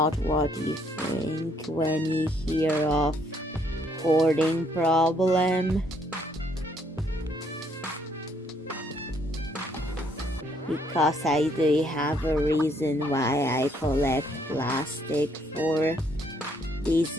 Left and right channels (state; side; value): normal; both; correlation 0.69